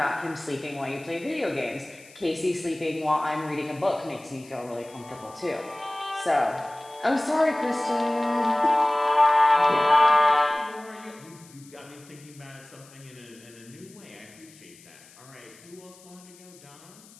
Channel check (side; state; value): left; noise; hiss, 23 dB below the sound